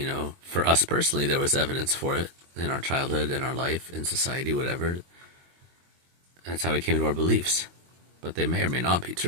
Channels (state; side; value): late; left; 23 ms